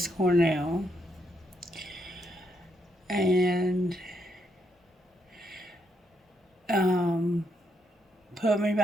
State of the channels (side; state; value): both; normal; correlation 0.77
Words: Cornell. And Put Me